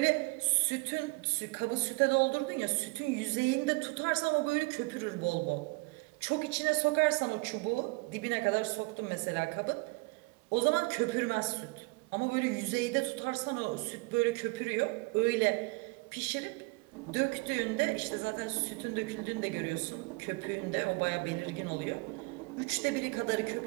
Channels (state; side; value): quieter; left; 27.1 dB